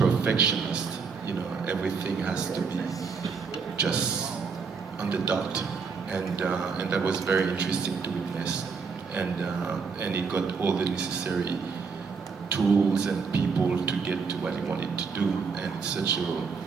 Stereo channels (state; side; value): quieter; left; 5.3 dB